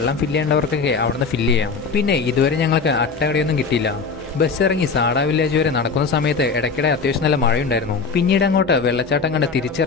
ഫില്ല് ചെയ്യേണ്ടവർക്കൊക്കെ അവിടുന്ന് ഫില്ല് ചെയ്യാം. പിന്നെ ഇതുവരെ ഞങ്ങൾക്ക് അട്ടകടിയൊന്നും കിട്ടിയില്ല. ബസ് ഇറങ്ങി സാഡ വില്ലേജ് വരെ നടക്കുന്ന സമയത്ത് ഇടയ്ക്കിടെ അത്യാവശ്യം നല്ല മഴയുണ്ടായിരുന്നു. പിന്നീട് അങ്ങോട്ട് വെള്ളച്ചാട്ടം കണ്ട്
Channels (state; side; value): quieter; right; 4.9 dB